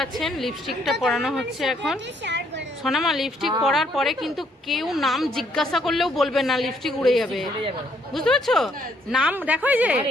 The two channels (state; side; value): normal; both; correlation 0.69